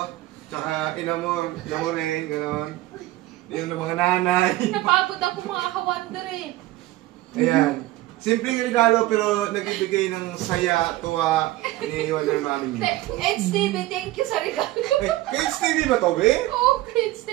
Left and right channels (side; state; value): left; quieter; 17.0 dB